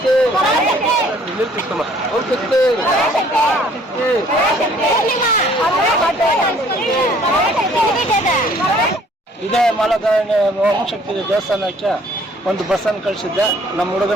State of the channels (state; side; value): normal; both; correlation 0.58